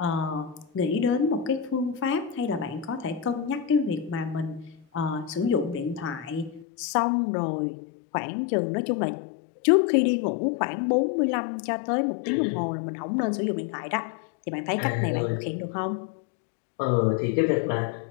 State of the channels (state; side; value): drops out; right; at 6.7 s